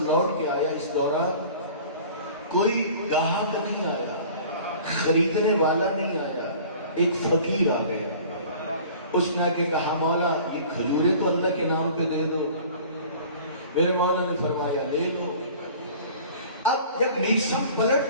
لوٹ کے آیا، اس دوران کوئی گاہک نہیں آیا، خریدنے والا نہیں آیا. ایک فقیر آ گیا. اس نے آ کے کہا مولا یہ کھجوریں تو اللہ کے نام پہ دے دو. میرے مولا نے فرمایا لے لو. اب جب میسم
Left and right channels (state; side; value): inverted; both; correlation -0.45